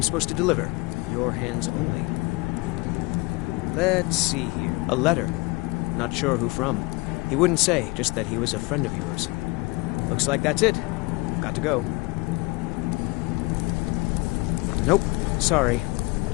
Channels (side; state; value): right; quieter; 24.9 dB